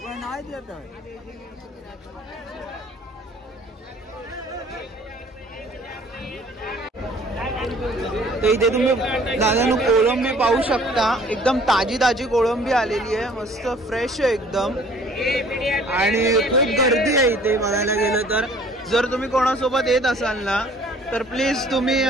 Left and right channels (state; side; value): normal; both; correlation 0.54